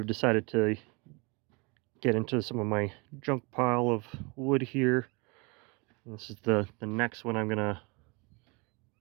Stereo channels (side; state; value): left; quieter; 29.1 dB